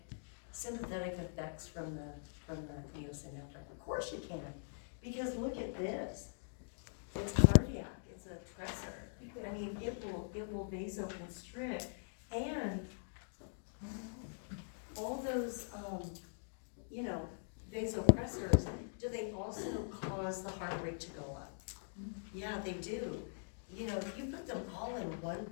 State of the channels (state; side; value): silent; right; digital silence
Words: sympathetic effects from the neosynephrine? Of course you can, because look at this. It's cardiac, it's a tressor. I mean, it will vasoconstrict, and all those, vasopressors, do they also cause the heart rate to go up? Yeah, they do. You know, if you put them all in one